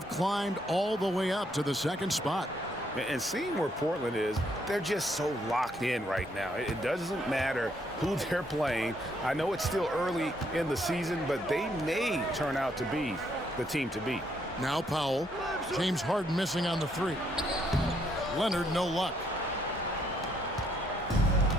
climbed all the way up to the second spot. And seeing where Portland is, they're just so locked in right now. It doesn't matter who they're playing. I know it's still early in the season, but they may turn out to be the team to beat. Now Powell. James Harden missing on the 3. Leonard, no luck.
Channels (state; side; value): normal; both; correlation 0.72